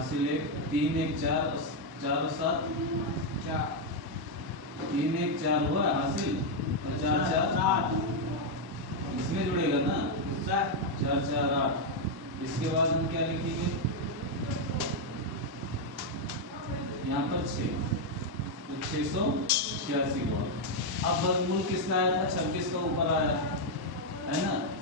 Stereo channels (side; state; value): left; late; 1.1 ms